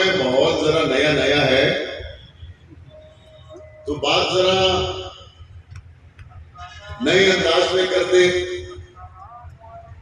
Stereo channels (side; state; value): both; identical; correlation 1.00